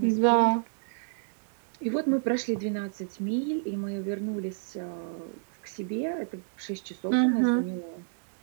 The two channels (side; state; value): left; silent; digital silence